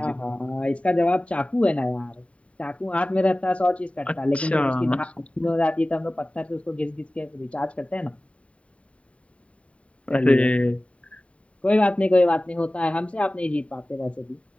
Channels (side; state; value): right; late; 0.064 ms